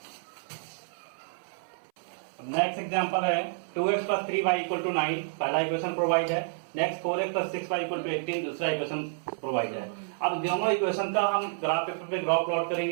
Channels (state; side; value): silent; left; 58 dB below the other